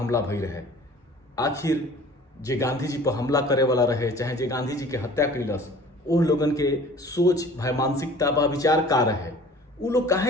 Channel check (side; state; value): both; normal; correlation 0.47